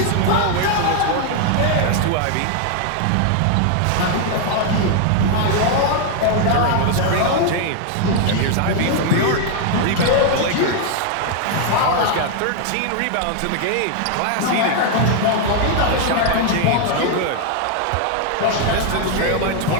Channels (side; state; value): both; different; correlation 0.00